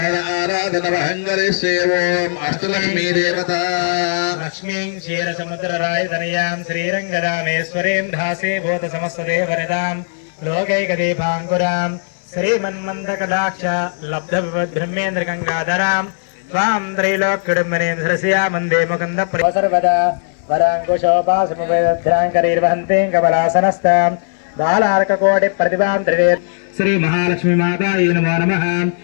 अष्टलक्ष्मी देवता लक्ष्मीं क्षीरसमुद्ररायतनयां श्रीरङ्गरामेश्वरीं धासे भूतसमस्तदेवनितां लोकैकदीपाङ्कुरां श्रीमन्मन्दकटाक्ष लब्धविपद्ब्रह्मेन्द्रगङ्गाधरां त्वां त्रैलोक्यडुम्बनीं धरस्या वन्दे मुकुन्दप्रिय सर्वदा वराङ्कुशोपासमुपैदध्राङ्करीर्वहन्तीं कमलासनस्तां बालार्ककोटि प्रतिभां त्रिवेद श्री महालक्ष्मी माता नमो नमः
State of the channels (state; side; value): silent; right; digital silence